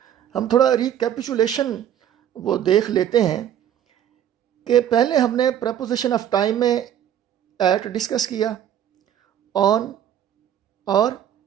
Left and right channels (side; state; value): left; quieter; 10.1 dB